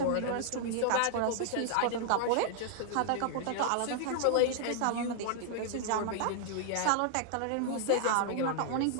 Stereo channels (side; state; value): both; different; correlation -0.01